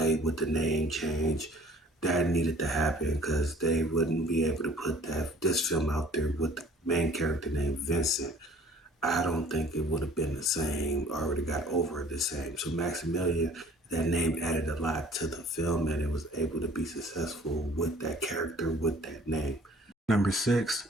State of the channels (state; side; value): normal; both; correlation 0.52